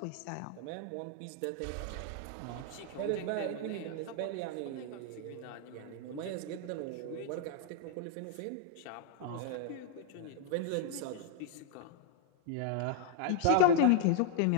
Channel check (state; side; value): different; both; correlation 0.00